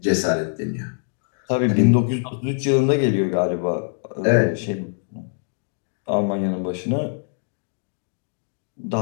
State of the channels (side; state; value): right; silent; 63 dB below the other